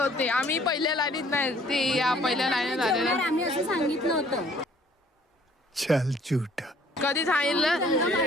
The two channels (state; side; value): normal; both; correlation 0.58